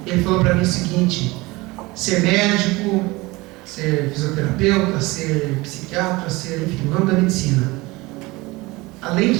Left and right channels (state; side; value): quieter; left; 22.2 dB